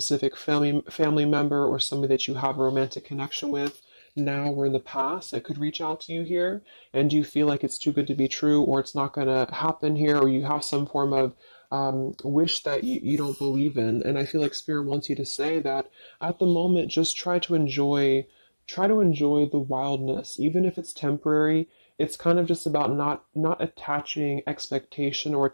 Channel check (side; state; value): both; inverted; correlation -1.00